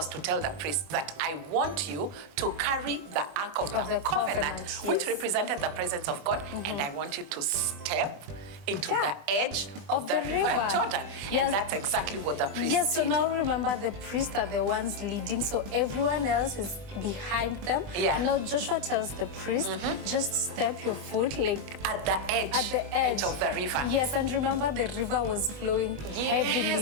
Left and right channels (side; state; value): left; late; 20 ms